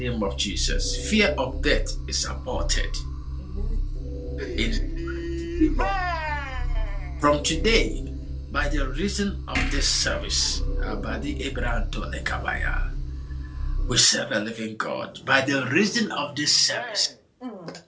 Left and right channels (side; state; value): both; identical; correlation 1.00